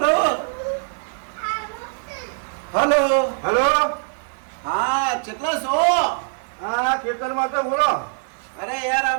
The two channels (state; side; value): silent; left; digital silence